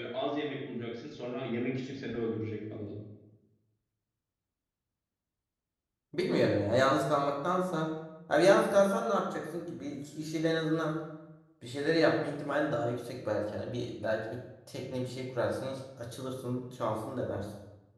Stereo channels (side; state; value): both; identical; correlation 1.00